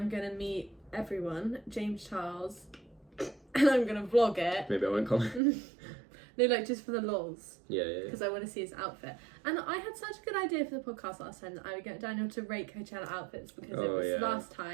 going to meet everyone, James Charles, and I'm going to vlog it. Maybe I won't come. No, like just for the lols. Yeah. Because I want to see his outfit. And I had such a good idea for the podcast last time that I would get Daniel to rate Coachella outfits because it was last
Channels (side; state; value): left; drops out; at 5.4 s